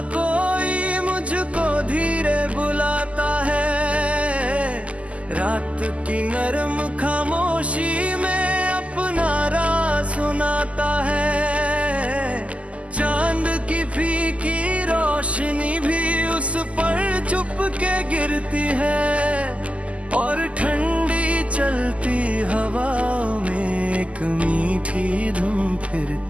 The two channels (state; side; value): late; left; 0.064 ms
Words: कोई मुझको धीरे बुलाता है, रात की नरम खामोशी में अपना राज सुनाता है। चांद की फीकी रोशनी भी उस पर चुप के गिरती है, और ठंडी चलती हवाओं में एक मीठी धुन